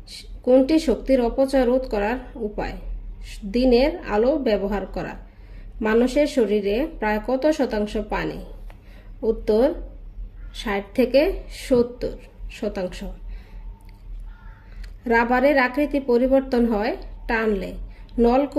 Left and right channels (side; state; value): both; identical; correlation 1.00